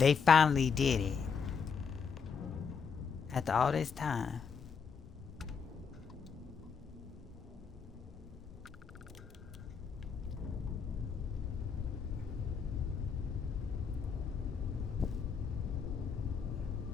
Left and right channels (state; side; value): quieter; right; 6.0 dB